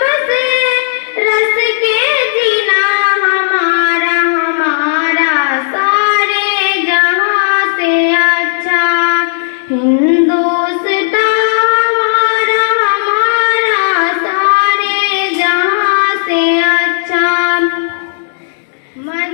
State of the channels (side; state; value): right; silent; digital silence